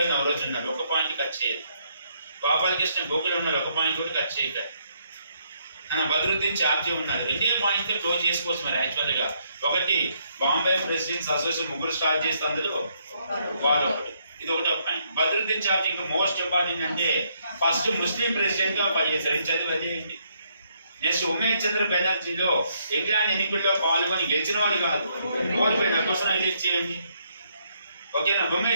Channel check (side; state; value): both; inverted; correlation -0.73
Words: నవరోజు ఉన్నాడు, ఒక పాయింట్ కట్ చేయదు. గోపాలకృష్ణ గోకులు ఉన్నారు, ఒక పాయింట్ కూడా కట్ చేయగలరు. బద్రుద్దీన్ చార్జీ ఉన్నారు, రెండే పాయింట్స్ క్లోజ్ చేసుకోవచ్చు. మరి యాక్చువల్గా ఒకటి బాంబే ప్రెసిడెంట్స్ అసోసియేషన్ ముగ్గురు స్టార్ట్ చేస్తే అందులో వాళ్ళు ఒకటి, ఇది ఒకటి ఒక పాయింట్. బద్రుద్దీన్ చార్జీ ఇంకా మోస్ట్ ఇంపార్టెంట్ అంటే ఫస్ట్ ముస్లిం ప్రెసిడెంట్ గా పనిచేశారు, ఇది చదివి అది ఏంటి. నెక్స్ట్ ఉమేష్ చంద్ర బెనర్జీలో ఇంగ్లాండ్ ఎన్నికల్లో పాల్గొని గెలిచిన వాడు కాదు, ఓడిపోయిన కోసం ఎలెక్ట్ చేయండి. ఓకేనా.